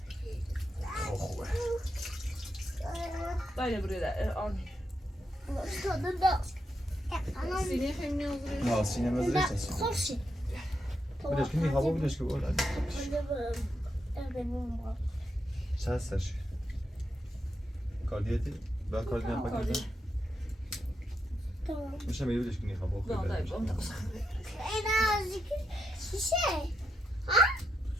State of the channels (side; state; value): both; normal; correlation 0.83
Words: خوبه Dai buraya da on. Sine hem ne olur? نه سینما زرشت خوشی بدش که میخوابه بدش که بود چه هستش؟ کاردیتی؟ با کاردی نفاکیده؟ میشه میگه بدش که میخوابه این از شیشه